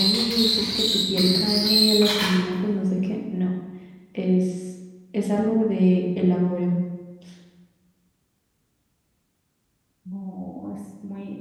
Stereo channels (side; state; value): both; identical; correlation 1.00